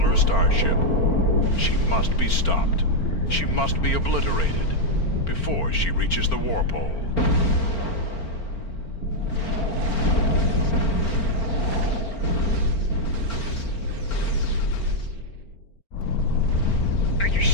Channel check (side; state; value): right; late; 4.4 ms